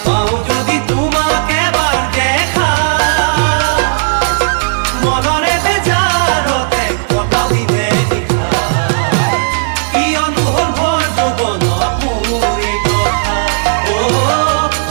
পাও যদি তোমাকে এবার দেখা, মনরে বেজারতে কত দিনে নিশা, কিয়নো হল ভর যৌৱনত মোৰ এই দশা,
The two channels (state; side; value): silent; left; digital silence